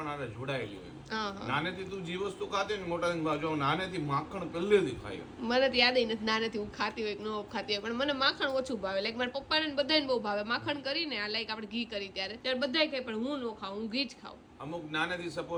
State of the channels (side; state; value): both; identical; correlation 1.00